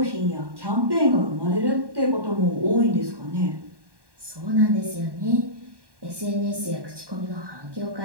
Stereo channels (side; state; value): left; late; 1.1 ms